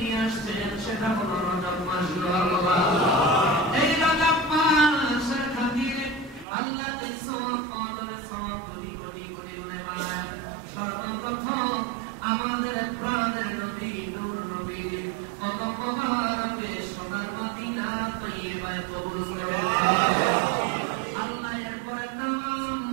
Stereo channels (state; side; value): drops out; left; at 6.5 s